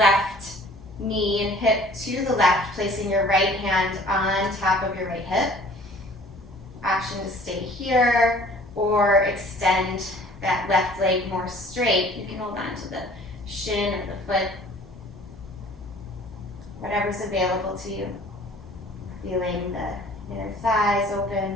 knee and hip to the left, placing your right hand on top of your right hip. Option to stay here or extend that left leg more straight. You can hold on to the shin or the foot, whatever's available to you. Feeling the inner thighs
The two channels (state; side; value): normal; both; correlation 0.51